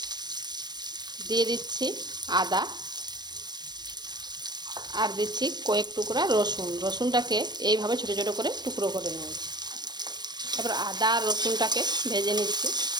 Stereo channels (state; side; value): late; left; 0.21 ms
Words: দিয়ে দিচ্ছি আদা আর দিচ্ছি কয়েক টুকরা রসুন। রসুনটাকে এইভাবে ছোট ছোট করে টুকরো করে নিয়েছি। তারপর আদা আর রসুনটাকে ভেজে নিচ্ছি।